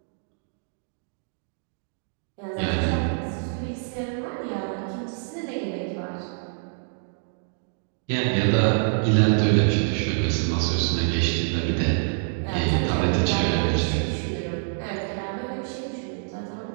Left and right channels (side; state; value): left; silent; digital silence